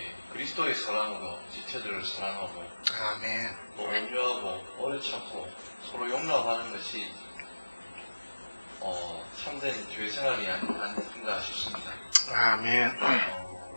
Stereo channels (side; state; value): both; inverted; correlation -1.00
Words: 그리스도의 사랑으로 지체들을 사랑하고, 아멘. 또 온유하고 오래 참고 서로 용납하는 것이 참된 교회 생활이 아닌가 싶습니다. 아멘.